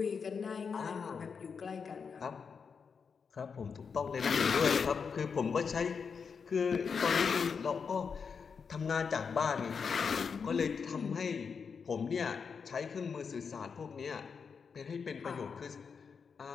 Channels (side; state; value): right; quieter; 5.9 dB